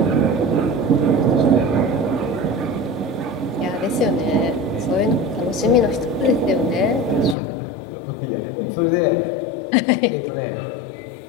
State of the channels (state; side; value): drops out; right; at 7.4 s